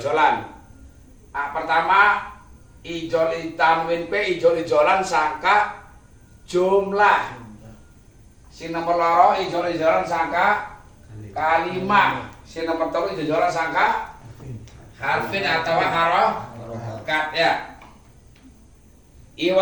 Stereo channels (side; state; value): both; identical; correlation 1.00